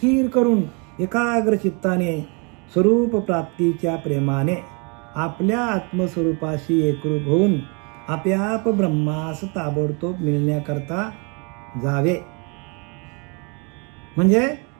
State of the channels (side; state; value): left; quieter; 33.5 dB